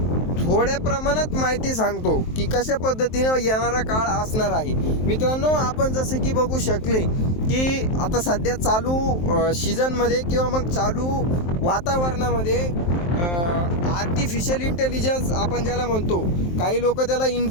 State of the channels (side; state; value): right; late; 23 ms